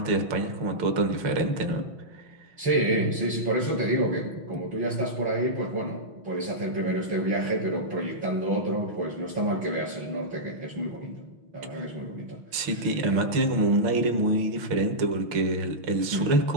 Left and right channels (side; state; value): left; late; 6.1 ms